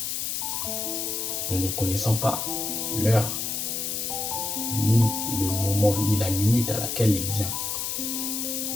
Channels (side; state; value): left; noise; hiss, 2 dB below the sound